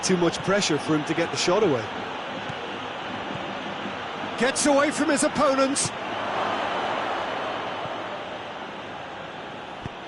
much pressure for him to get the shot away. Gets away from his opponents.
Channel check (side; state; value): both; identical; correlation 1.00